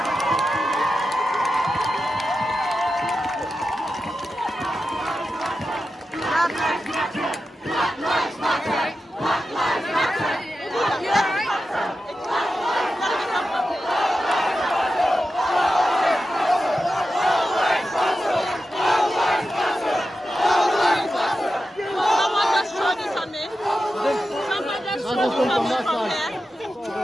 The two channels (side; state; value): both; normal; correlation 0.91